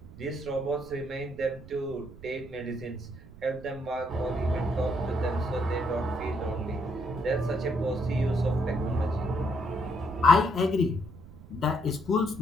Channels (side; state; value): right; noise; rumble, 18 dB below the sound